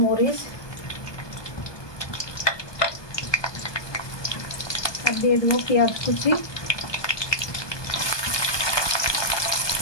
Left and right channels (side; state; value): right; late; 1.2 ms